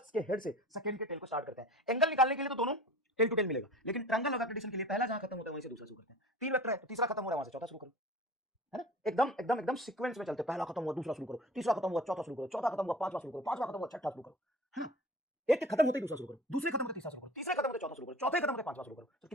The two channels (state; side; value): normal; both; correlation 0.40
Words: से सेकंड के टेल को स्टार्ट करते हैं। एंगल निकालने के लिए तो दोनों टेल टू टेल मिलेगा, लेकिन ट्रायंगल ऑफ वेक्टर एडिशन के लिए पहला जहां खत्म होता है वहीं से दूसरा शुरू करते हैं। तीन वेक्टर है तो तीसरा खत्म हो रहा है वहां से चौथा शुरू करो, है ना? एकदम एकदम एकदम सीक्वेंस में चलते, पहला खत्म हुआ दूसरा शुरू करो, तीसरा खत्म हुआ चौथा शुरू करो, चौथा खत्म हुआ पांचवा शुरू करो, पांचवा खत्म हुआ छठा शुरू करो, है ना? एक खत्म होते ही दूसरा शुरू करो, दूसरे खत्म होते तीसरा शुरू करो, तीसरे खत्म होते चौथा शुरू करो, चौथे खत्म होते पांचवा शुरू करो। तो